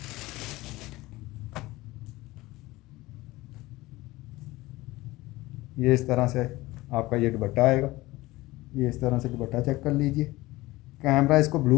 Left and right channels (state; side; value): quieter; right; 19.4 dB